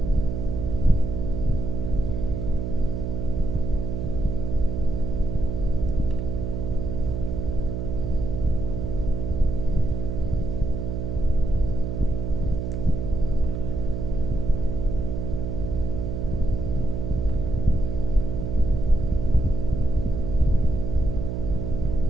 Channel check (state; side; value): noise; right; hum, 2 dB below the sound